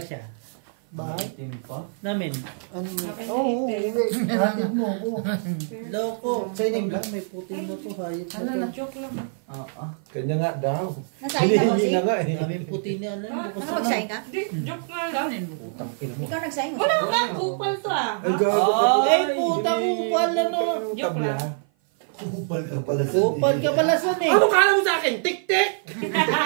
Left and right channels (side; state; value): left; silent; 55 dB below the other